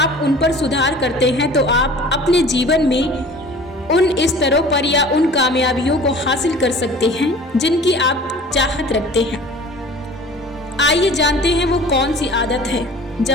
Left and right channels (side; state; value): both; normal; correlation 0.44